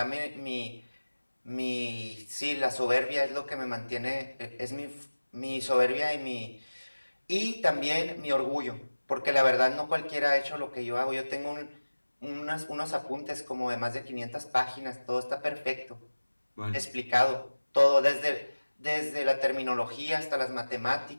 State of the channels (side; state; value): both; inverted; correlation -1.00